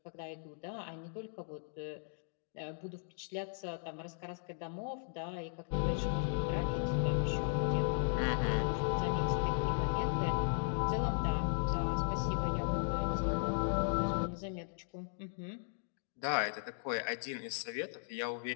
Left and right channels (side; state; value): right; silent; digital silence